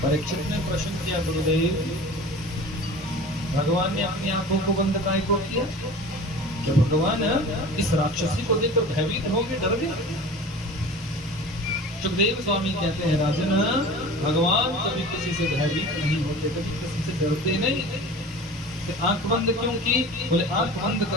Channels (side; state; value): both; normal; correlation 0.38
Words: परीक्षित ने प्रश्न किया, गुरुदेव भगवान ने अपनी आंखों को बंद काहे को किया? क्या भगवान इस राक्षसी को देखकर भयभीत होंगे, डर गए? सुखदेव स्वामी कहते हैं, राजन भगवान कभी किसी से भयभीत नहीं होते, कभी किसी से डरते नहीं। आंख बंद क्यों की? बोले, आंख बंद